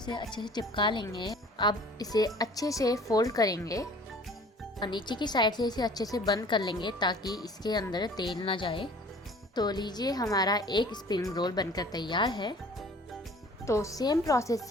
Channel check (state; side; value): normal; both; correlation 0.49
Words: अच्छे से चिपका लेंगे। अब इसे अच्छे से फोल्ड करेंगे और नीचे की साइड से इसे अच्छे से बंद कर लेंगे ताकि इसके अंदर तेल ना जाए। तो लीजिए हमारा एक स्प्रिंग रोल बनकर तैयार है। तो सेम प्रोसेस